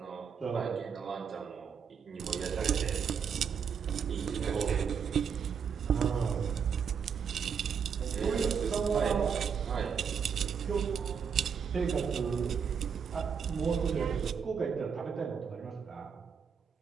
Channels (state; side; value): quieter; left; 6.8 dB